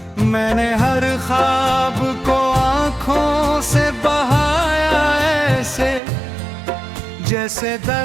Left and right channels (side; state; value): left; drops out; at 6.0 s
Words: मैंने हर ख्वाब को आंखों से बहाया ऐसे, जैसे